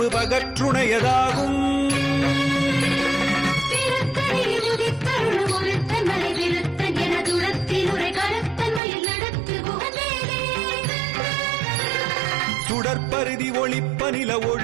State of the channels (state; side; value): drops out; left; at 8.8 s